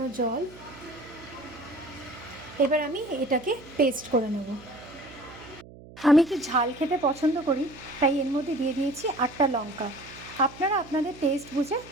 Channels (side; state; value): right; noise; hum, 19 dB below the sound